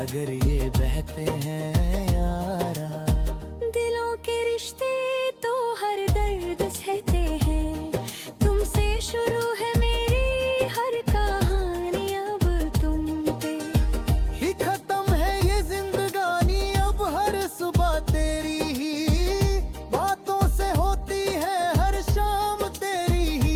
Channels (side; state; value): both; identical; correlation 1.00